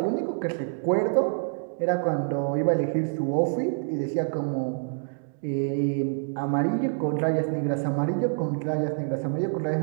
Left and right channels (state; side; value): silent; left; digital silence